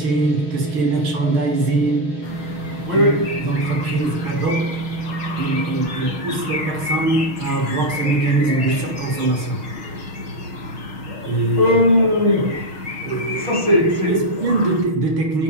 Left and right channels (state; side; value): late; left; 6.4 ms